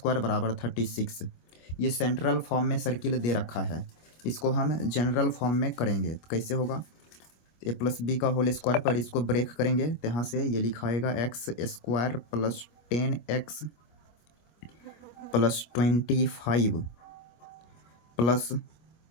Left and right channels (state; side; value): late; right; 25 ms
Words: बराबर 36। ये सेंट्रल फॉर्म में सर्किल दे रखा है, इसको हम जनरल फॉर्म में करेंगे। तो कैसे होगा? a+b का होल स्क्वायर पर इसको ब्रेक करेंगे, तो यहाँ से ये लिखाएगा x² plus 10x plus 25 plus